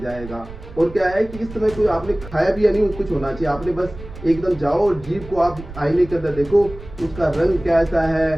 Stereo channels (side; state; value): right; noise; rumble, 15 dB below the sound